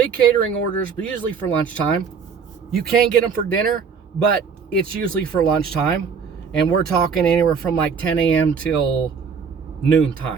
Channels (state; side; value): quieter; left; 6.1 dB